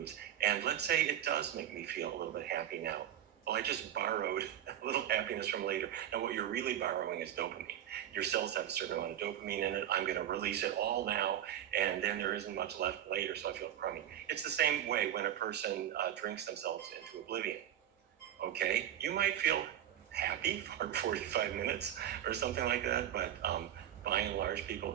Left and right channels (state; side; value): quieter; left; 11.0 dB